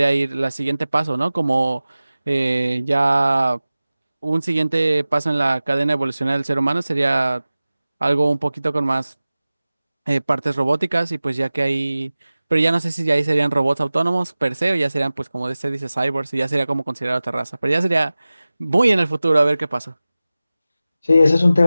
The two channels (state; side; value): inverted; both; correlation -0.97